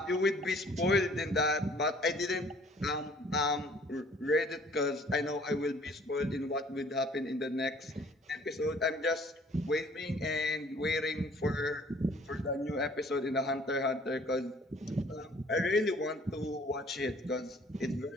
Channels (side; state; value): both; normal; correlation 0.56